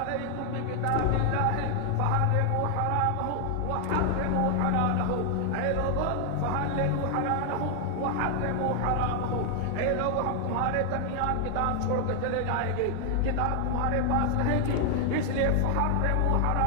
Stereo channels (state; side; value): different; both; correlation 0.00